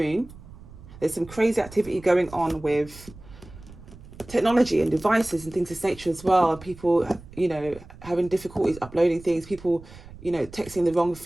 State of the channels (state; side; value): noise; right; rumble, 18 dB below the sound